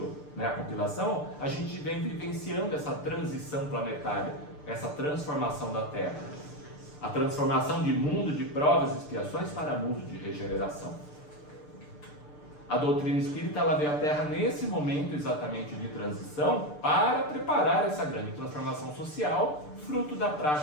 a compilação, a gente vem vivenciando essa transição planetária, essa transformação da Terra. A transformação de mundo de provas e expiações para mundo de regeneração. A doutrina espírita ela veio à Terra nesse momento exatamente de transição para preparar essa grande transformação social, fruto da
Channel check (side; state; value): right; late; 6.7 ms